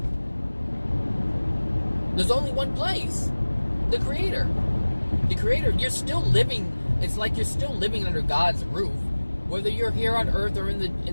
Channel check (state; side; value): inverted; both; correlation -1.00